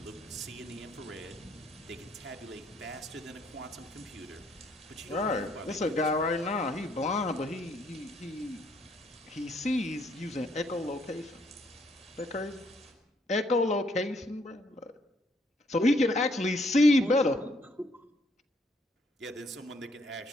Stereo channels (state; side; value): normal; both; correlation 0.69